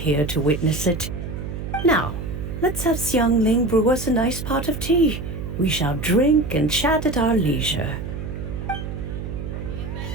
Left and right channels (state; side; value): noise; right; hum, 7 dB below the sound